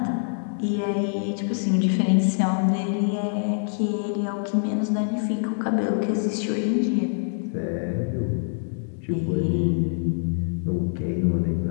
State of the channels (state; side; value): silent; right; digital silence